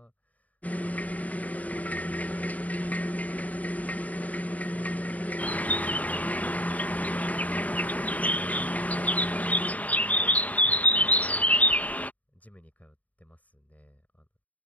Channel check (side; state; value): right; late; 0.072 ms